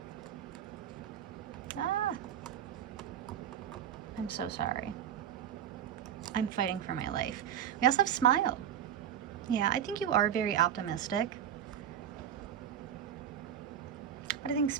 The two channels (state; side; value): quieter; left; 9.5 dB